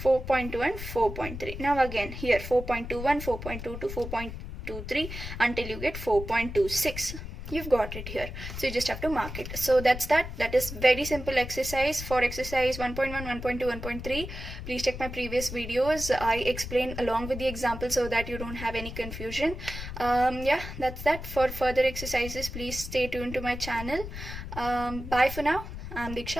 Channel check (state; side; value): noise; left; rumble, 9 dB below the sound